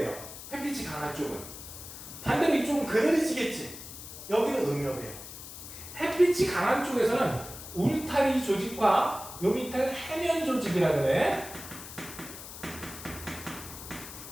햇빛이 강한 쪽은. 반대로 이쪽은 그늘지겠지. 여기는 음엽이에요. 햇빛이 강한 쪽에서는 울타리 조직과 요 밑에는 해면 조직이라 그래.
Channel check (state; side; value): noise; left; hiss, 12 dB below the sound